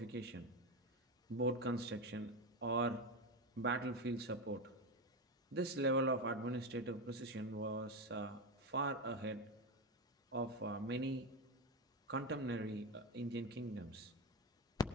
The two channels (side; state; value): both; normal; correlation 0.14